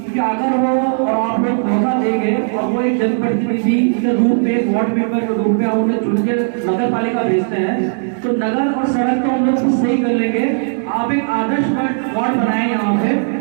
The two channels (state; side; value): silent; left; digital silence